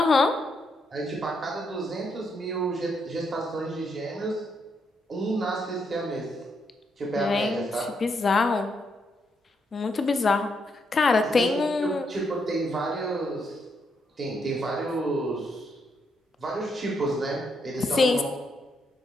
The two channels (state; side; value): normal; both; correlation 0.78